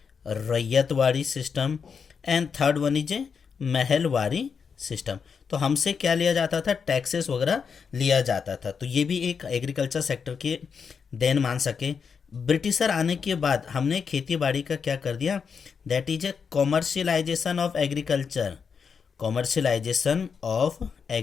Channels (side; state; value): right; quieter; 6.2 dB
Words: ryotwari system, and third one is a Mahalwari system. तो हमसे क्या लिया जाता था, टैक्सेस वगैरह लिया जाता था। तो ये भी एक एग्रीकल्चर सेक्टर के देन मान सके। ब्रिटिशर आने के बाद हमने खेती बाड़ी का क्या कर दिया, that is A commercialisation of agriculture, commercialisation of